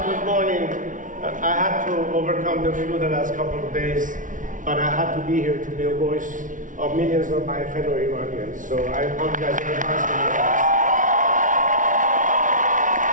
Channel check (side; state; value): left; late; 0.38 ms